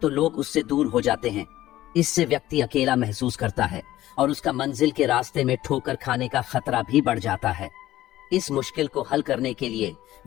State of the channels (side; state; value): right; quieter; 14.8 dB